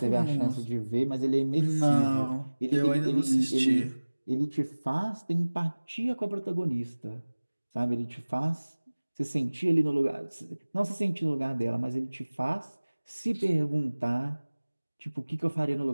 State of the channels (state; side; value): inverted; both; correlation -1.00